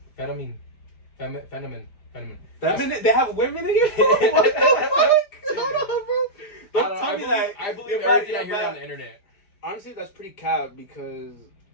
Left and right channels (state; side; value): late; right; 4.9 ms